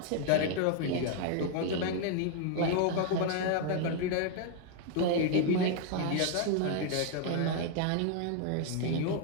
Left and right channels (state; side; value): different; both; correlation 0.00